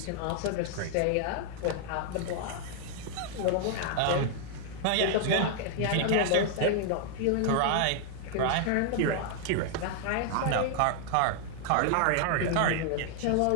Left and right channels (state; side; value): different; both; correlation 0.00